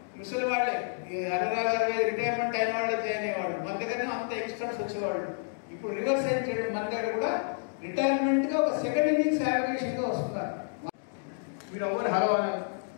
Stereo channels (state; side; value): silent; right; digital silence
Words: ముసలి వాళ్ళే 60 retirement అయిన వాళ్ళే జాయిన్ అయ్యేవాళ్ళు. మన దగ్గర అంత ఎక్స్పర్ట్స్ వచ్చేవాళ్ళు. ఇప్పుడు రివర్స్ అయిన చేయడం మన దగ్గర కూడా రిటైర్మెంట్ గా ఒక సెకండ్ ఇన్నింగ్స్ యావరేషన్ గా వస్తున్నారు. మీరు ఎవరు హలో